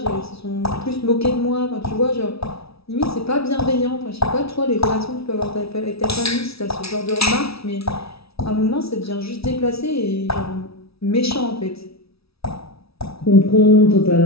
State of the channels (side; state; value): right; late; 0.76 ms